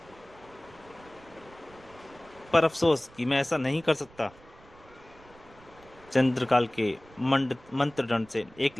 पर अफसोस कि मैं ऐसा नहीं कर सकता। चंद्रकाल के मंत्र दंड से एक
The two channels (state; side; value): noise; right; rumble, 25 dB below the sound